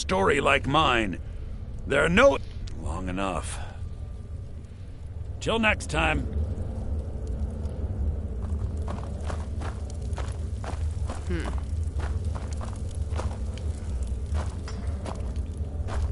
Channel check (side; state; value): both; identical; correlation 1.00